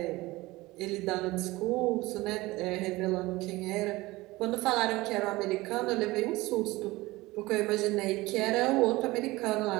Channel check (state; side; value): quieter; left; 20.2 dB